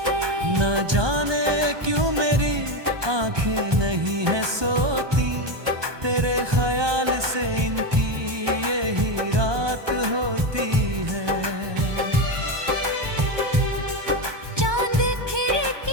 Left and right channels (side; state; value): left; late; 1.2 ms